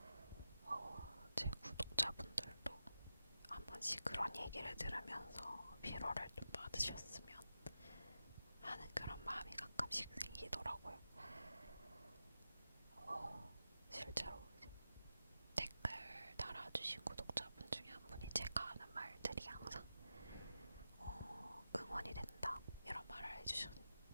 제 구독자분들도 한 번씩 그런 얘기를 들으면서 위로를 좀 받으셨으면 하는 그런 마음이 가끔씩 생기더라고요. 실제로 댓글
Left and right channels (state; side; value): inverted; both; correlation -0.91